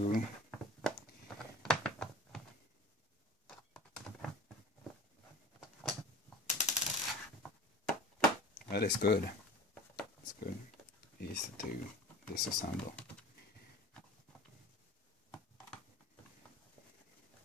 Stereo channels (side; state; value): both; normal; correlation 0.41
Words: That is good. It's good. Easy to disassemble.